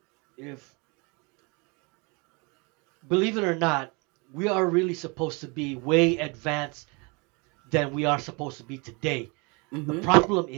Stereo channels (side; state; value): left; quieter; 30.0 dB